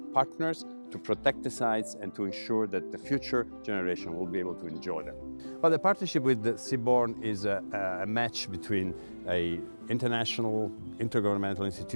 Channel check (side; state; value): both; inverted; correlation -1.00